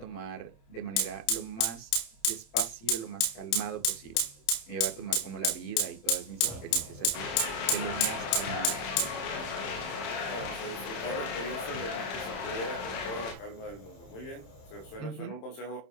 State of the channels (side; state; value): right; late; 27 ms